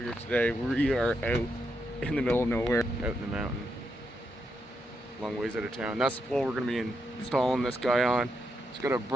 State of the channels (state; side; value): normal; both; correlation 0.82